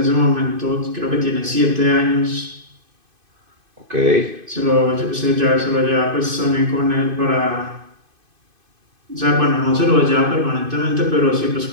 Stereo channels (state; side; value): late; left; 2.5 ms